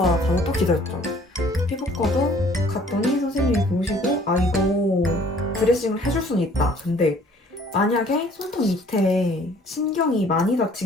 가서 또 기다렸죠. 피부과도 갔더니 선생님이 보시고 이거 드레싱을 해줄 수는 있다. 근데 만약에 손톱 밑에 신경이 많이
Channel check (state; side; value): normal; both; correlation 0.56